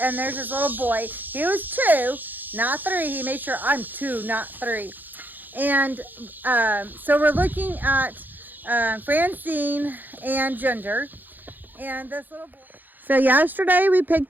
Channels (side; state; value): left; late; 0.087 ms